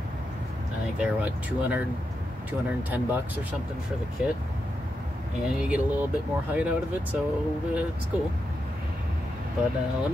I think they're what, 210 bucks or something for the kit, and you get a little bit more height out of it, so it's cool. But let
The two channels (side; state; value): both; normal; correlation 0.86